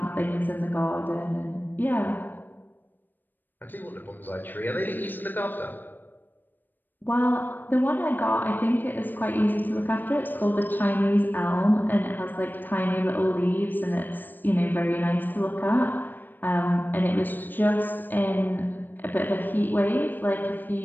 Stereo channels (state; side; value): late; right; 0.091 ms